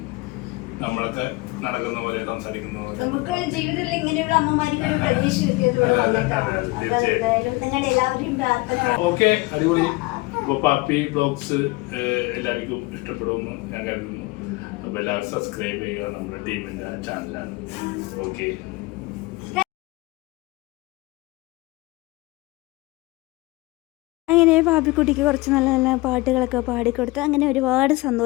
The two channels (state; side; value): quieter; right; 22.5 dB